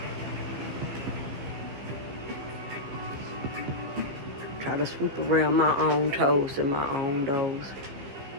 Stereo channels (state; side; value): late; left; 14 ms